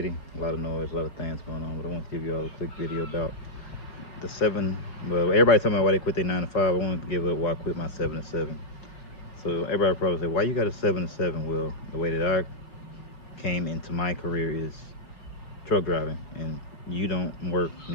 a lot of noise, a lot of things going on, but I want to give you all a quick video about the seven. Well, everybody talking about why they quit their 9 to 5. I wanted to give up why I quit my 7 to 7. So everybody probably say, why you got a 7 to 7? Well, the way that I came into my career is truck driving, and you don't work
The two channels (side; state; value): right; late; 4.8 ms